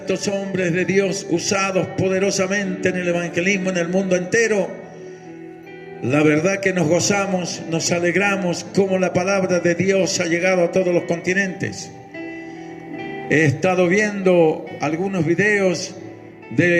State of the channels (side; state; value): both; identical; correlation 1.00